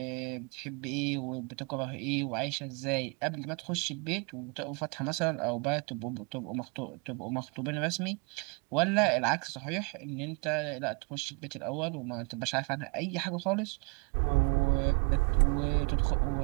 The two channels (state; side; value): quieter; left; 32.4 dB